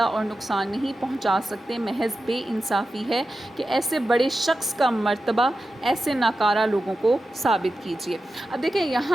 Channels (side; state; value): both; normal; correlation 0.92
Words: اور نقصان نہیں پہنچا سکتے محض بے انصافی ہے کہ ایسے بڑے شخص کا مرتبہ ایسے ناکارہ لوگوں کو ثابت کیجیے۔ اب دیکھیں